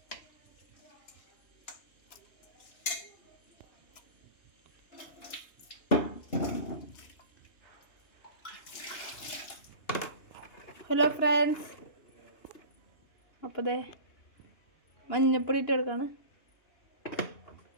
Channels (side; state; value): right; late; 2.9 ms